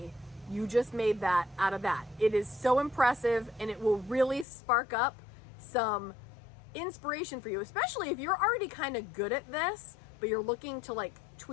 you just made that out of that. It is so impressive, and it will really spark up some inspiration for you, especially if you're already kind of good at this, but you're looking to like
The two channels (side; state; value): right; drops out; at 4.5 s